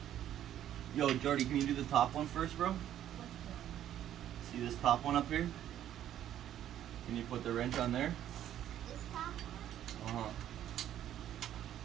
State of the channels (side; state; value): left; quieter; 11.3 dB